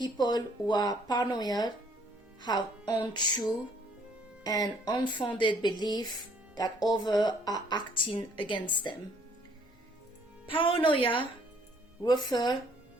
who are paranoid have untrue and unfounded belief that others are acting against them. Paranoia refers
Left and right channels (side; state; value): both; normal; correlation 0.62